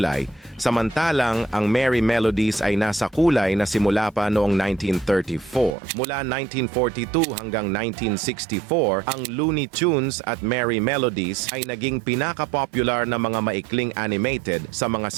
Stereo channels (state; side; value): drops out; left; at 5.8 s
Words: samantalang ang Merry Melodies ay nasa kulay na simula pa noong 1934. Mula 1942 hanggang 1964, ang Looney Tunes at Merry Melodies ay naging pinaka-popular na mga maikling animated sa mga